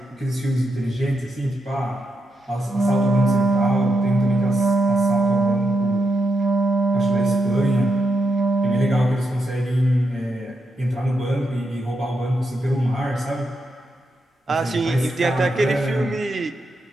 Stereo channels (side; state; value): both; normal; correlation 0.83